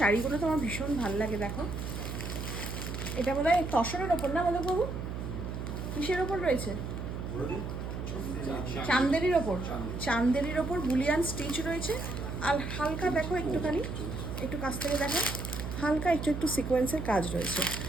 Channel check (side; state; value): right; noise; hum, 5 dB below the sound